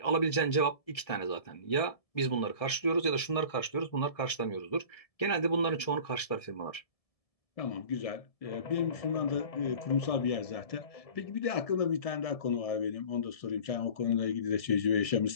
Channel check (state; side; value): late; right; 1.7 ms